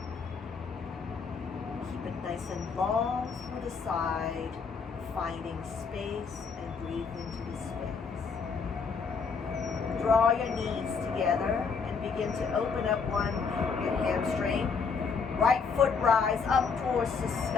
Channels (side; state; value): right; quieter; 5.4 dB